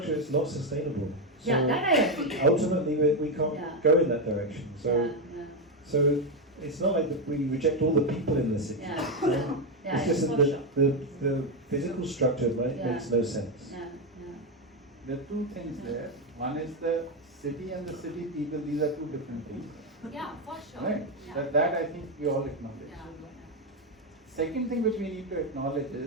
it's not sustainable. So Yeah, that I agree. ultimately, we can't go in that direction. So it's not like that we reject all the people in the city. It's just that the physical structure makes no sense. There are two things there. One is the city and the city people. These are two different things. Yeah, for sure. Right? Yeah. That I think we all acknowledge. Second thing which we need to acknowledge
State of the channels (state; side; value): normal; both; correlation 0.07